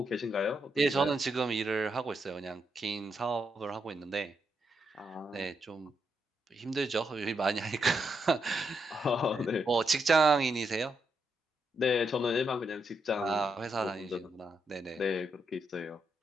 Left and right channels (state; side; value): normal; both; correlation 0.81